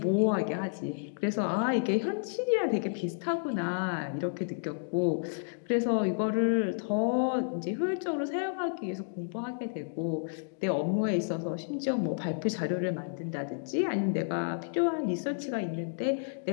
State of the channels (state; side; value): silent; right; digital silence